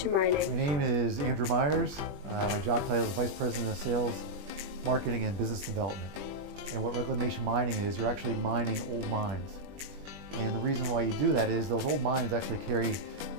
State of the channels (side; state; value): left; late; 21 ms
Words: mining. My name is Andrew Myers. My job title is Vice President of Sales, Marketing, and Business Development. And what reclamation mining is, you're actually mining old mines. And the reason why you do that is those old mines actually carry